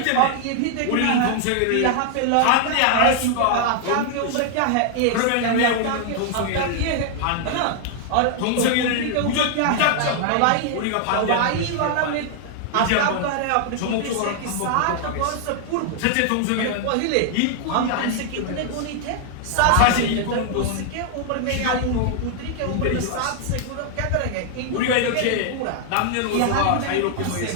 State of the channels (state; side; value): different; both; correlation 0.00